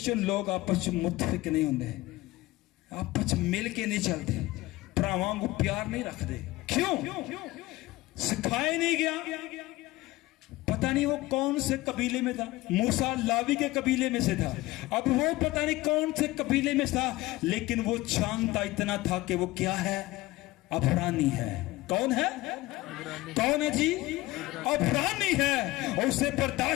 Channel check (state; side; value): quieter; right; 19.0 dB